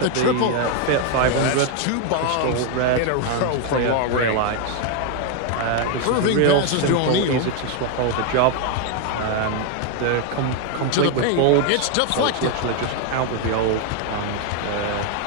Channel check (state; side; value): different; both; correlation 0.01